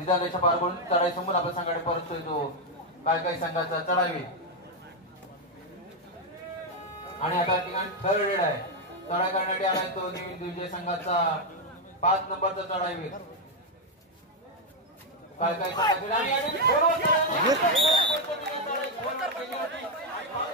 पार पडून चढाई समोर आपल्या संघाकडे परततोय तो काळकाई संघाचा चढावी आणि आता ठिकाणी थर्ड रेड आहे चढाई करण्यासाठी आलाय तो न्यू विजय संघाचा 5 नंबरचा चढाईवीर काळकाई संघाचा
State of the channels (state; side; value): normal; both; correlation 0.02